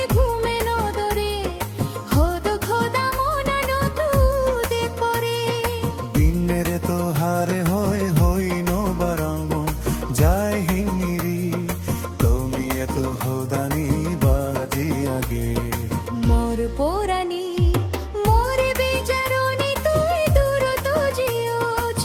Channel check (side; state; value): both; identical; correlation 1.00